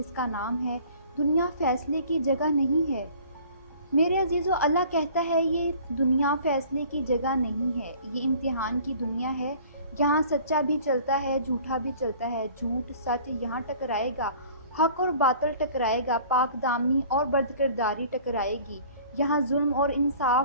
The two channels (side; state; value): both; inverted; correlation -0.49